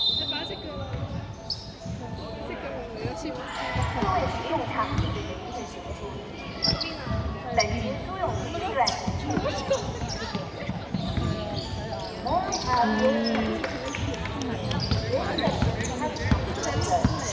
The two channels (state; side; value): identical; both; correlation 1.00